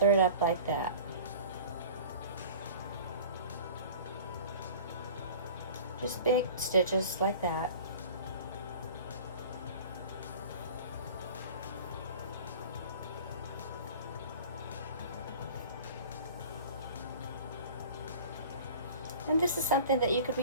it up like that. Just big stitches like that. And this is something that you could be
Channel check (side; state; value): both; inverted; correlation -0.41